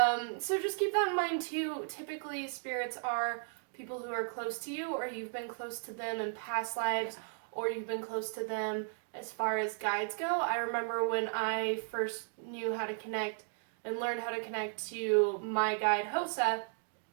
just keep that in mind too. Typically, spirits are people who are close to you, or you've been close to them in past lives, or you've been close to them as far as guides go. I remember when I first knew how to connect and learned how to connect to my guide, Hosa,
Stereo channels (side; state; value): left; silent; digital silence